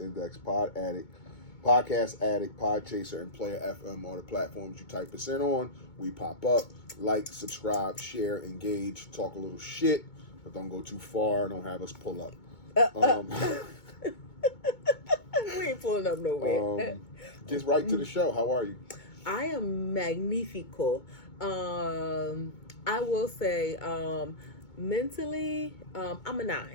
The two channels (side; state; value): right; late; 2.2 ms